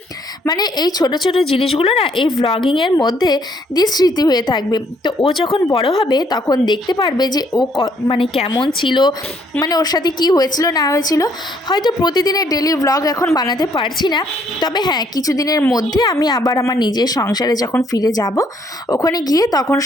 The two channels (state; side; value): normal; both; correlation 0.68